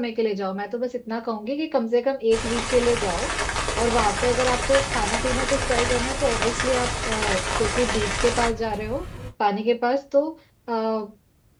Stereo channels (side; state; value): both; identical; correlation 1.00